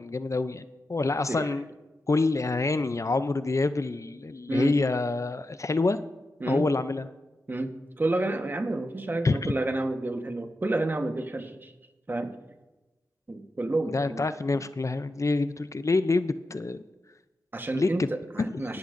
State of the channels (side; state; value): both; normal; correlation 0.88